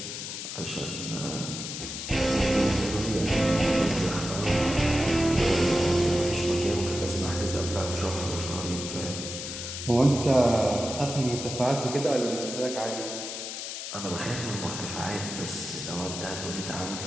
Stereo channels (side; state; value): left; noise; hiss, 7 dB below the sound